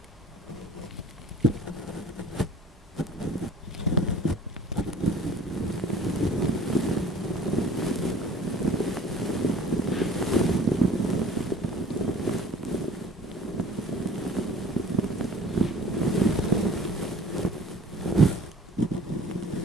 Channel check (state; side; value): normal; both; correlation 0.48